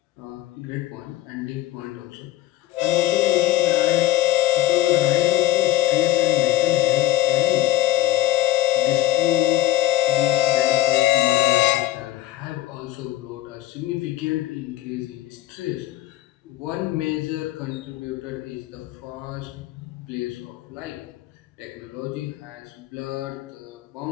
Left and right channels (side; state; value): right; quieter; 15.3 dB